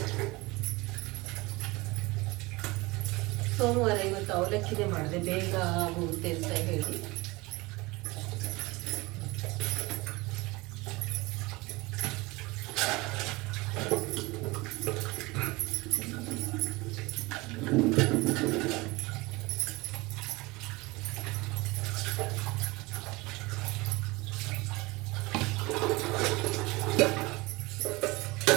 ಸೋಮವಾರ ಇವತ್ತು ಅವಲಕ್ಕಿನೇ ಮಾಡಿದೆ, ಬೇಗ ಆಗುತ್ತೆ ಅಂತ ಹೇಳಿ.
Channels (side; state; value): left; quieter; 23.0 dB